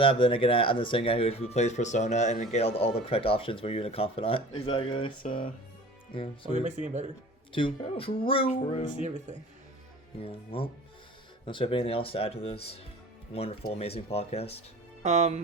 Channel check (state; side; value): normal; both; correlation 0.42